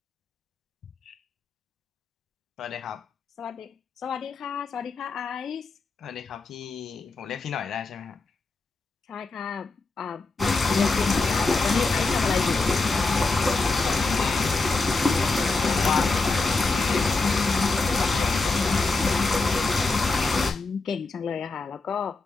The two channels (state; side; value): quieter; right; 3.7 dB